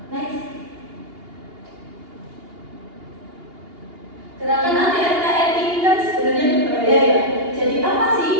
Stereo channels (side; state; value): left; late; 2.8 ms